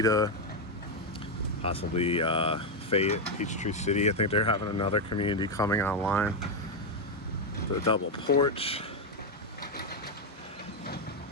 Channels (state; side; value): normal; both; correlation 0.04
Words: possibly Fayette, Peachtree City. I think they're having another community coming online. The double porch.